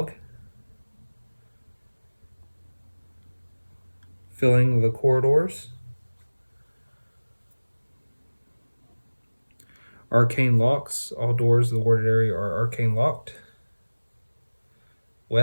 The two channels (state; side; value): inverted; both; correlation -1.00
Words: filling the corridors. Arcane locks, all doors of the warded area are arcane locked.